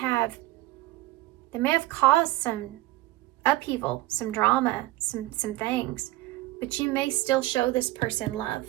caused some upheaval, some drama, some things, but you may still show this person love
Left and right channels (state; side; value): quieter; left; 18.4 dB